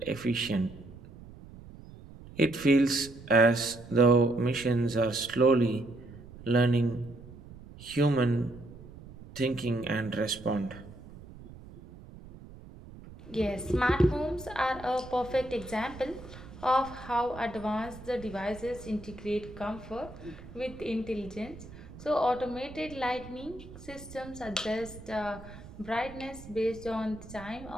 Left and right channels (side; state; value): right; noise; rumble, 17 dB below the sound